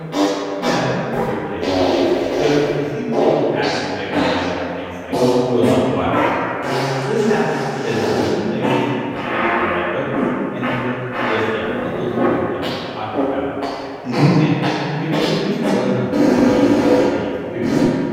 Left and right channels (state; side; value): identical; both; correlation 1.00